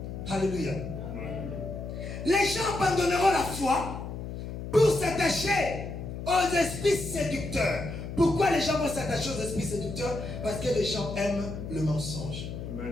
Alléluia. Amen. Les gens abandonneront la foi pour s'attacher aux esprits séducteurs. Pourquoi les gens vont s'attacher aux esprits séducteurs? Parce que les gens aiment le mensonge.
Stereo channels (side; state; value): left; noise; hum, 7 dB below the sound